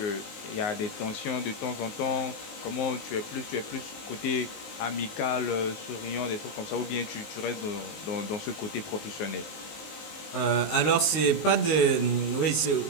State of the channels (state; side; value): late; right; 19 ms